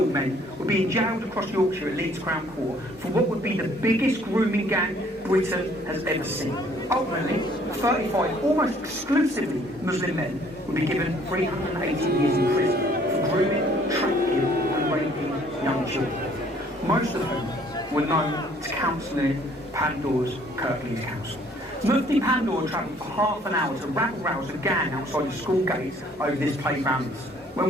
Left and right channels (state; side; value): normal; both; correlation 0.60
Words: men were being jailed across Yorkshire at Leeds Crown Court for what would be the biggest grooming gang Britain has ever seen. Ultimately, 35 almost exclusively Muslim men would be given 380 years in prison for grooming, trafficking and raping young children. Most of whom were known to Councillor Pandor's Kirklees Council. Mufti Pandor travelled for half an hour to rabble-rouse a gang outside the school gates over this playground. When